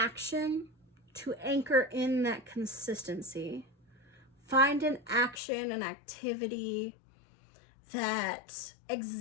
to anchor in that consistency. Find an action, an activity that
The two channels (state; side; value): drops out; right; at 5.4 s